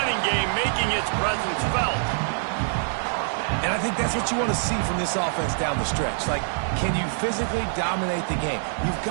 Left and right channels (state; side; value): silent; left; 58 dB below the other